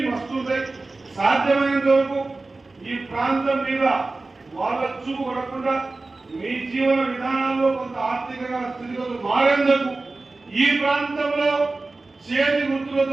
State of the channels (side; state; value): left; quieter; 3.4 dB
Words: వస్తుంటాయి. సాధ్యమైనంత వరకు ఈ ప్రాంతం మీద వాళ్ళ చూపు పడకుండా మీ జీవన విధానాల్లో కొంత ఆర్థికంగా స్థితిగతులు మారేందుకు ఈ ప్రాంతంలో చేతి